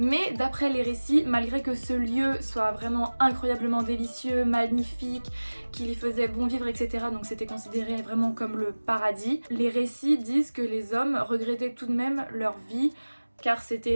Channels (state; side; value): inverted; both; correlation -1.00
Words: d'après les récits, malgré que ce lieu soit vraiment incroyablement délicieux, magnifique, qu'il y faisait bon vivre, etc., donc c'était considéré vraiment comme le paradis, les récits disent que les hommes regrettaient tout de même leur vie, car